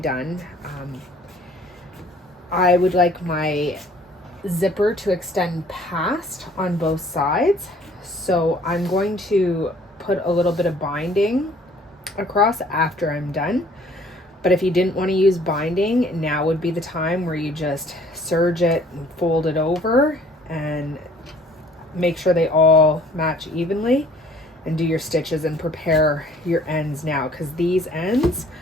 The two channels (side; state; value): both; normal; correlation 0.56